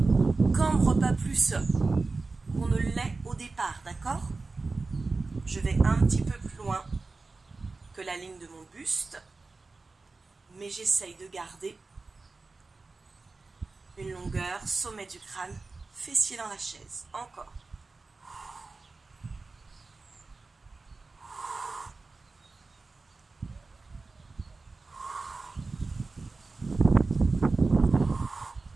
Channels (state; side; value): quieter; left; 3.8 dB